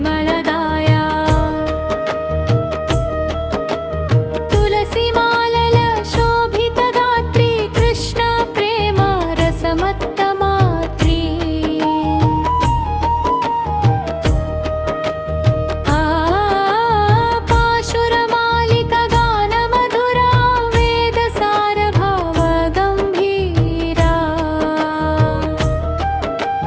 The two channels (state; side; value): identical; both; correlation 1.00